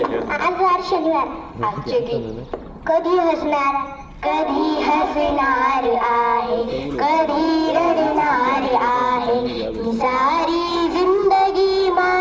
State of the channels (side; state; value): both; identical; correlation 1.00